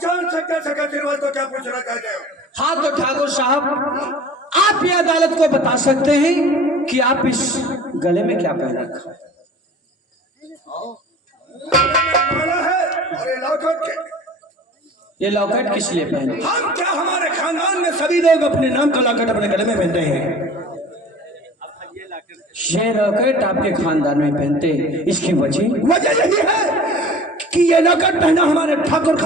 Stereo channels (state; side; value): normal; both; correlation 0.43